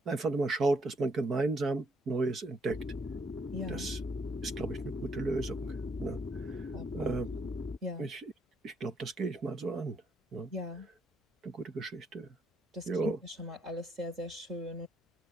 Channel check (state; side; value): normal; both; correlation 0.73